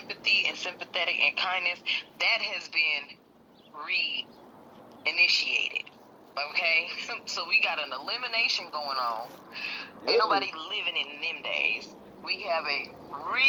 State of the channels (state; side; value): identical; both; correlation 1.00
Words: and sympathetic and kindness, that has been re-initiated. Okay, so we got an elimination going on. Ain't nobody living in them days. We have a